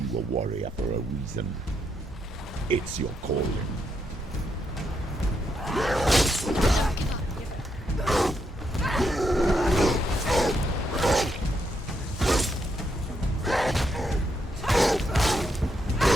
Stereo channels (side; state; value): both; normal; correlation 0.79